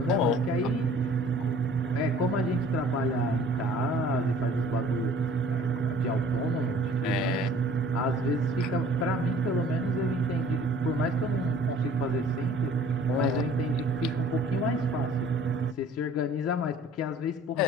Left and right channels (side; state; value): both; normal; correlation 0.51